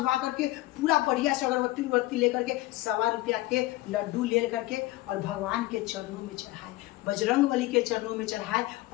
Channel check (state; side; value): quieter; right; 18.4 dB